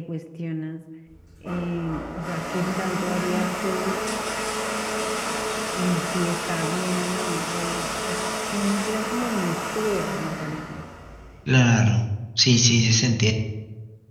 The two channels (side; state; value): both; identical; correlation 1.00